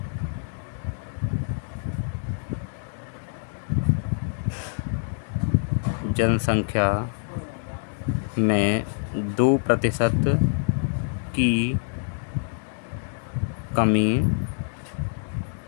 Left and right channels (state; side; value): silent; right; digital silence